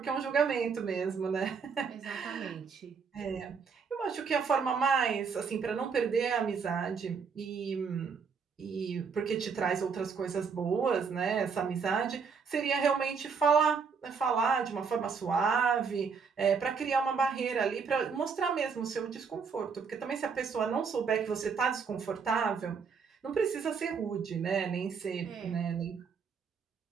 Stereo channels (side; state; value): left; quieter; 5.7 dB